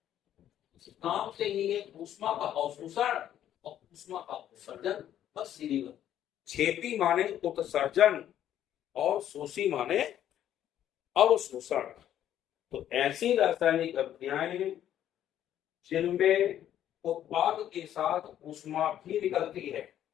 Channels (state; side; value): quieter; right; 11.1 dB